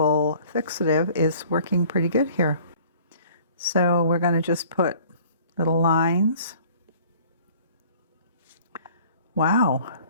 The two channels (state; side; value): inverted; both; correlation -0.52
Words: fixative is working pretty good here. So we're going to just put little lines. Wow,